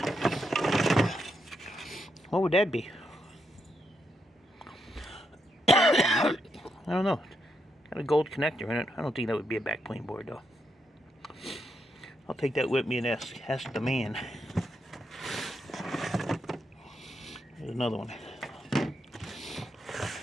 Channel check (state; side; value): normal; both; correlation 0.82